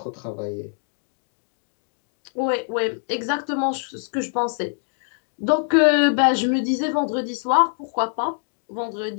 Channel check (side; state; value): right; silent; 63 dB below the other